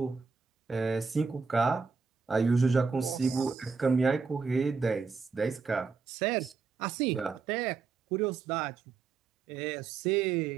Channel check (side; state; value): left; quieter; 5.1 dB